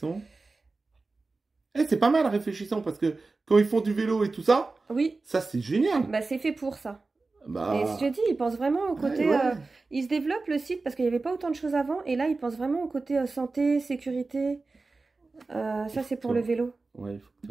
Eh, c'est pas mal réfléchissons parce que quand ils font du vélo et tout ça, oui, ça c'est génial. bah c'est fait pour ça. Et Bah, je te dis, ils pensent vraiment au côté. ouais, ouais. Ils se développent le site parce qu'il n'y avait pas autant de choses avant, et là, ils pensent vraiment au côté santé, sécurité. Ça, c'est pour le vélo. Ouais, il faut que tu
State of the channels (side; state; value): left; quieter; 3.7 dB